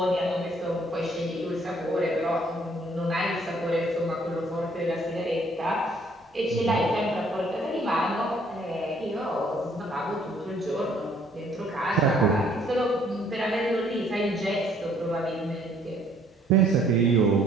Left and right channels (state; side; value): normal; both; correlation 0.62